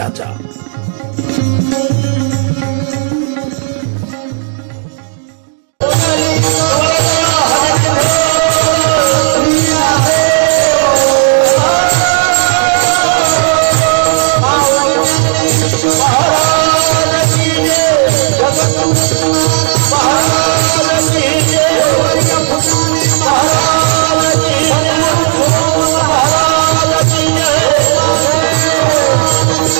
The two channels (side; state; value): left; silent; digital silence